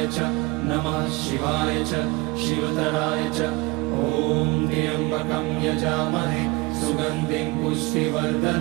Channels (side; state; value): left; quieter; 24.9 dB